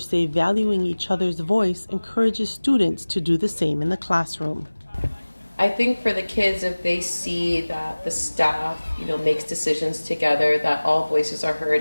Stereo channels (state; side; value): inverted; both; correlation -1.00